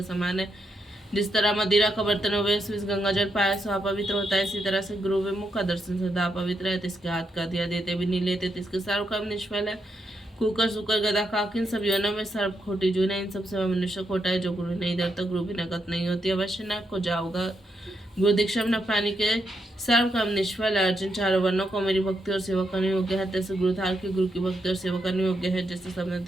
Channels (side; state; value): both; normal; correlation 0.81